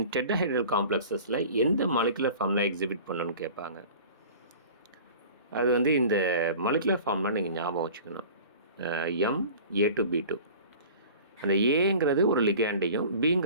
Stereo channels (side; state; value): both; inverted; correlation -0.42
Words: டெட்ராஹெட்ரல் காம்ப்ளெக்ஸஸில் எந்த மாலிகுலர் ஃபார்முலா எக்ஸிபிட் பண்ணணும்னு கேட்பாங்க. அது வந்து இந்த மாலிகுலர் ஃபார்முலா நீங்கள் ஞாபகம் வச்சுக்கணும். MA2B2. அந்த ஏங்கிறது ஒரு லிகாண்டையும்